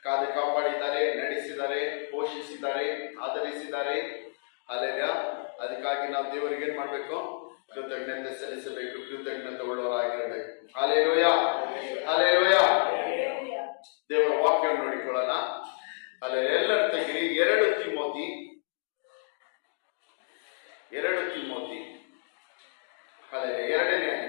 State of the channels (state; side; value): silent; right; digital silence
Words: ಕಾದು ಕಾಪಾಡಿದ್ದಾರೆ, ನಡೆಸಿದ್ದಾರೆ, ಪೋಷಿಸಿದ್ದಾರೆ, ಆಧರಿಸಿದ್ದಾರೆ. ಅಲ್ಲೆಲ್ಲ ಅದಕ್ಕಾಗಿ ನಾವು ದೇವರಿಗೆ ಏನ್ ಮಾಡ್ಬೇಕು? ಕೃತಜ್ಞತೆ ಸಲ್ಲಿಸಬೇಕು, ಕೃತಜ್ಞತೆ ಉಳ್ಳವರಾಗಿರಬೇಕು. Hallelujah, hallelujah. ದೇವರ ವಾಕ್ಯವನ್ನು ನೋಡಿಕೊಳ್ಳೋಣ. ಅಲ್ಲೇ ಎಲ್ಲರ ತೆಗಿರಿ 2 ತಿಮೋಥಿ ಅಲ್ಲೇ 2ನೇ